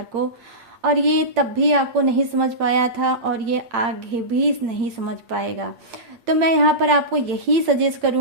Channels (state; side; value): late; left; 8.8 ms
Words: को, और ये तब भी आपको नहीं समझ पाया था, और ये आगे भी नहीं समझ पाएगा। तो मैं यहाँ पर आपको यही सजेस्ट